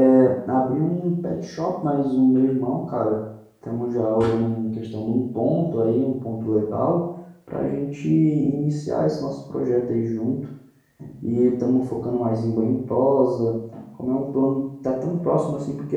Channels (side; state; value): both; identical; correlation 1.00